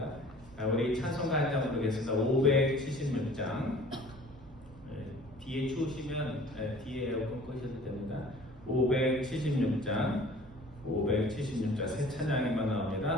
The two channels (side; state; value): both; normal; correlation 0.48